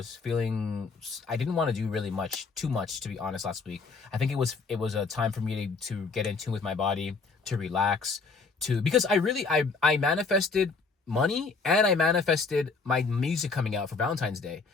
want to do really too much, to be honest. Last week, I think it was a time for me to get in tune with my body, to relax, because I manifested money and I manifested my music coming out for Valentine's Day,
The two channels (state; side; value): quieter; right; 4.5 dB